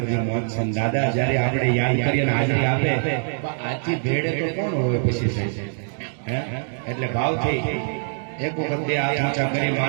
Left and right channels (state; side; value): silent; left; digital silence